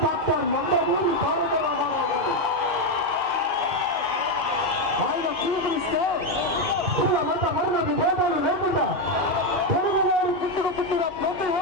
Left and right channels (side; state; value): both; normal; correlation 0.06